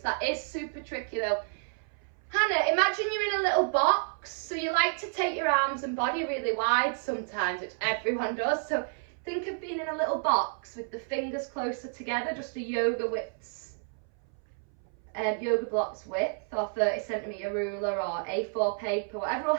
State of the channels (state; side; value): silent; left; 58 dB below the other